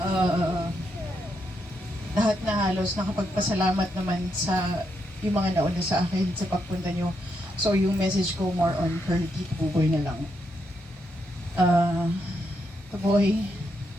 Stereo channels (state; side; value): normal; both; correlation 0.80